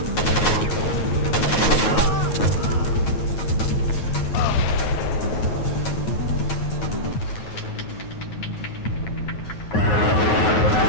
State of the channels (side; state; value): right; late; 9.4 ms